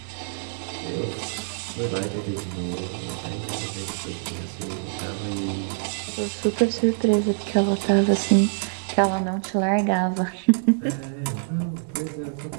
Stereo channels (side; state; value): left; silent; digital silence